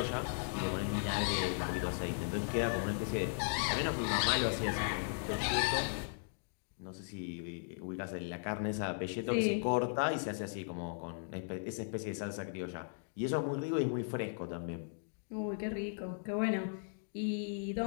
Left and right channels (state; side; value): silent; right; digital silence